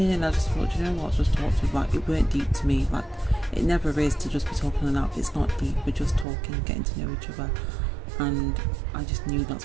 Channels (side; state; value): left; drops out; at 6.2 s